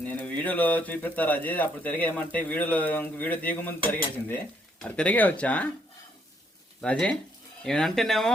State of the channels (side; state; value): both; normal; correlation 0.71